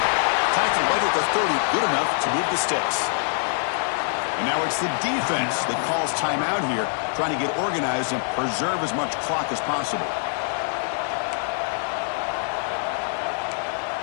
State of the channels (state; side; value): silent; right; 55 dB below the other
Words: Tackled right at the 30. Good enough to move the sticks. And now it's the defense that calls timeout here, trying to get organized and preserve as much clock as possible.